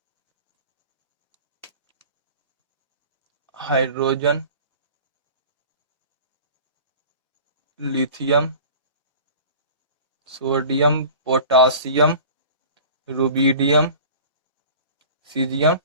hydrogen, lithium, sodium, potassium, rubidium, caesium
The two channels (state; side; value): inverted; both; correlation -0.41